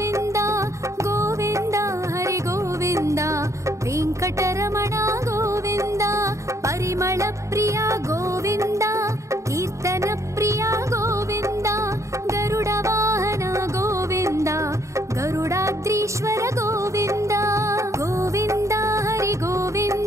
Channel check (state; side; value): late; left; 0.14 ms